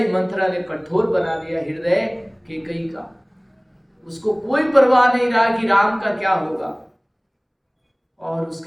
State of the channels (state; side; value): identical; both; correlation 1.00